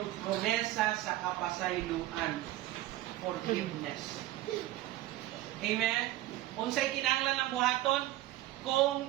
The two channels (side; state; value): left; quieter; 15.7 dB